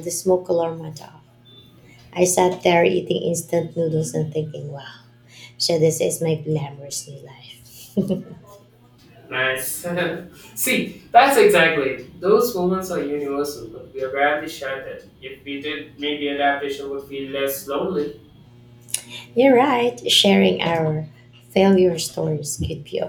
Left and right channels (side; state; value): both; identical; correlation 1.00